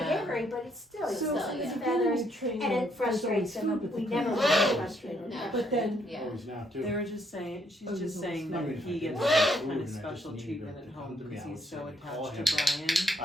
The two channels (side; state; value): both; normal; correlation 0.71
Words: aviary, but it's still, it's So still yeah. his it's feathers, getting trained and on it frustrates someone's him. food, but We the never parents really don't. frustrated him. But then, Yeah. Always now too. They were just saying, she's Oh, just there's saying I that mean, if I he did gets want food kind and of I just special needed treatment it to at come home to me, because I would he's say so call attached to him.